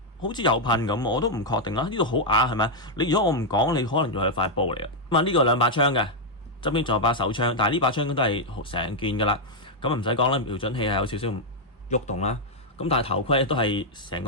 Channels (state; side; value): normal; both; correlation -0.02